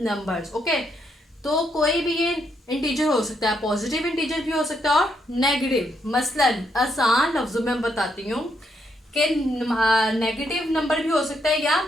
नंबर्स। ओके, तो कोई भी ये इंटीजर हो सकता है, पॉजिटिव इंटीजर भी हो सकता है और नेगेटिव। मसलन आसान लफ्जों में बताती हूँ कि नेगेटिव नंबर भी हो सकता है या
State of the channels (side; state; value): both; normal; correlation 0.77